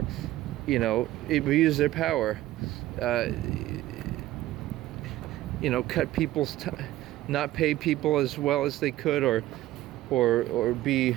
abuse their power, cut people's time, not pay people as well as they could, or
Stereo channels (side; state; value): left; quieter; 15.3 dB